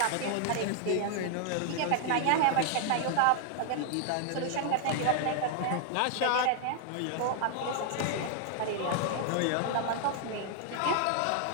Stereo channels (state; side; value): different; both; correlation 0.00